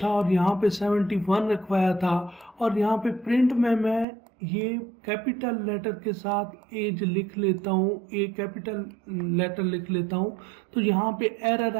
और यहाँ पे 71 रखवाया था, और यहाँ पे प्रिंट में मैं ये कैपिटल लेटर के साथ एज लिख लेता हूँ, ए कैपिटल लेटर लिख लेता हूँ, तो यहाँ पे एरर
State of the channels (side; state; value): left; drops out; at 4.0 s